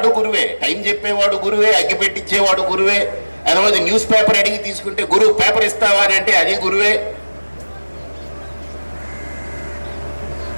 గురువే. టైం చెప్పేవాడు గురువే, అగ్గిపెట్టించేవాడు గురువే. అదే న్యూస్ పేపర్ అడిగి తీసుకుంటే గురువు పేపర్ ఇస్తావా అని అంటే అది గురువే.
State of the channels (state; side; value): inverted; both; correlation -1.00